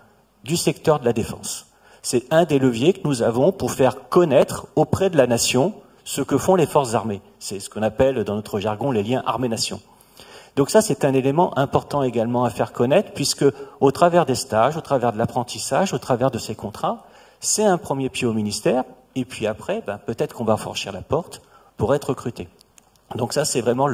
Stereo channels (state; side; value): identical; both; correlation 1.00